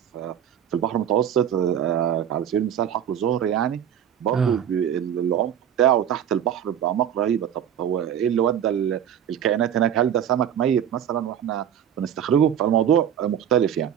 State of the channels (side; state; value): left; quieter; 9.5 dB